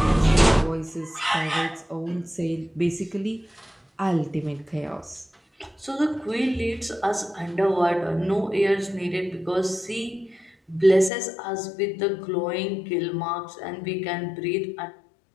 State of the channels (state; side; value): drops out; right; at 11.1 s